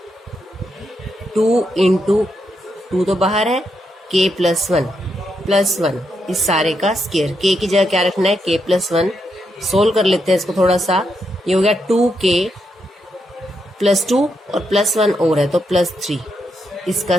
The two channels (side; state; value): both; normal; correlation 0.81